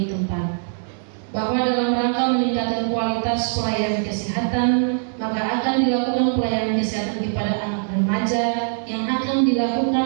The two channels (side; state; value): left; silent; 64 dB below the other